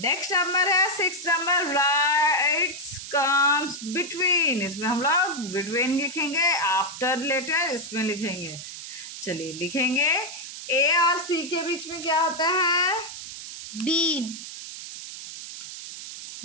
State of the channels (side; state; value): right; noise; hiss, 10 dB below the sound